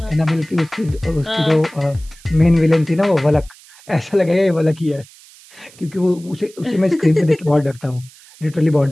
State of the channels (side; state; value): right; noise; hiss, 24 dB below the sound